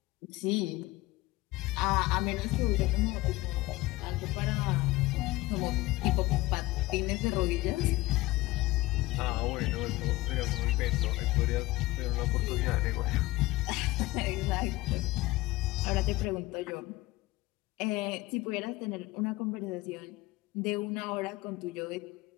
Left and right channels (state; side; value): quieter; right; 19.3 dB